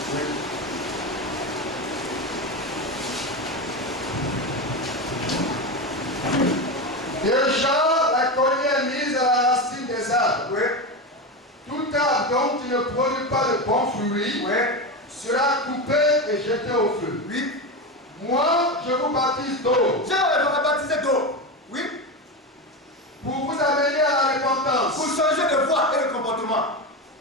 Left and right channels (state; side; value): normal; both; correlation 0.18